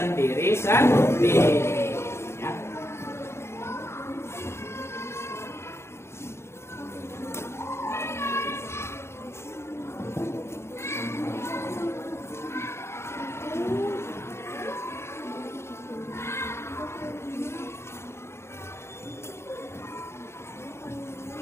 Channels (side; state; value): right; late; 0.13 ms